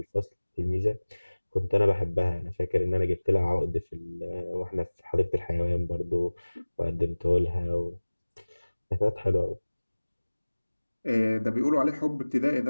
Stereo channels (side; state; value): both; inverted; correlation -1.00